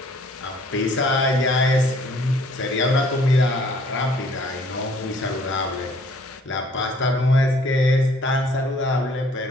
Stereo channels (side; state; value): both; normal; correlation 0.58